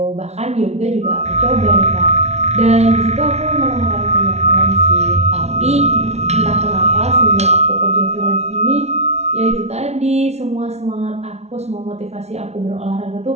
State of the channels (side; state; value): left; late; 0.31 ms